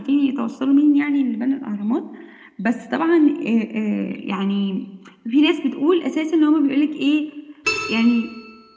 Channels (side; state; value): both; identical; correlation 1.00